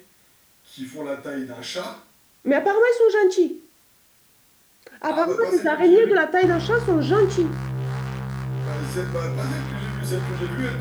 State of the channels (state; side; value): identical; both; correlation 1.00